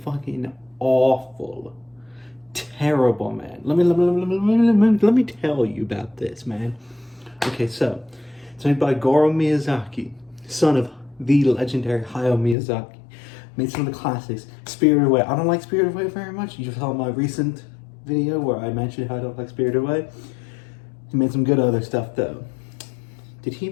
fucking awful. Terrible, man. Let me tell you about this, man. Okay, so it's made by Goro Miyazaki, son of the legendary Hayao Miyazaki. Made some of the classics. Spirited Away. I don't like Spirited Away very much. You saw my recent video where I mentioned how I don't like Spirited Away. He made some good other stuff though. Did he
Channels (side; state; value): right; drops out; at 12.6 s